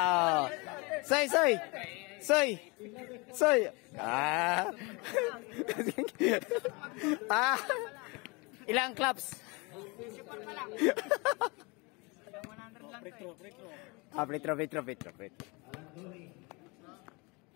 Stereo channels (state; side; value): quieter; right; 27.7 dB